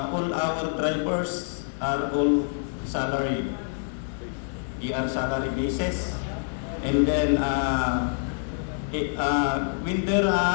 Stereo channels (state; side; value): silent; right; 61 dB below the other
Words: our drivers are all salary. They are salary basis, and then when their